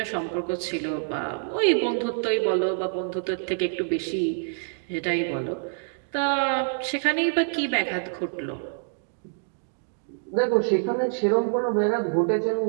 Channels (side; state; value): left; silent; digital silence